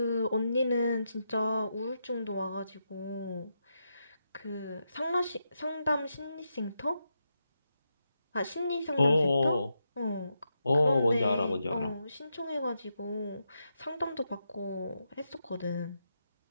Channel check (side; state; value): both; inverted; correlation -0.84